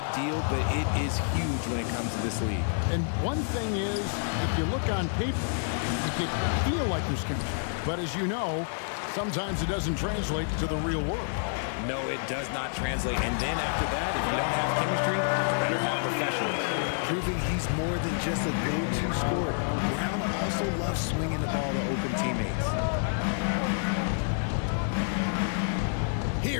deal, but it is huge when it comes to this league. And one thing is, if you look on paper, you can feel like there's chemistry. But as you know, sometimes it doesn't translate to the real world. No, it does not translate. And then after that, if you don't have chemistry, better have professionals. Proving he's more than just a go-to scorer. Brown also loves swinging the ball to open teammates.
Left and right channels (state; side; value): silent; right; digital silence